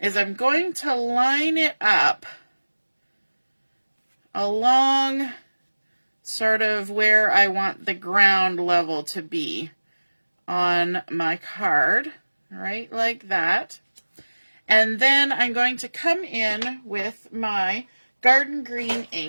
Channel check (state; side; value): inverted; both; correlation -1.00